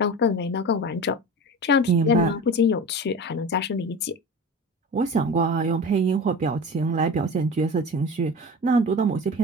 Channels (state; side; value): normal; both; correlation 0.32